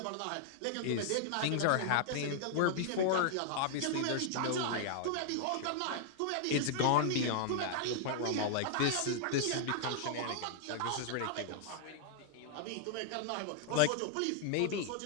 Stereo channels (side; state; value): both; different; correlation -0.01